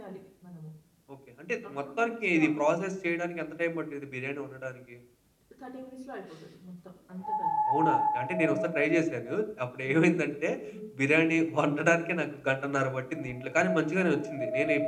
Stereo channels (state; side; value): identical; both; correlation 1.00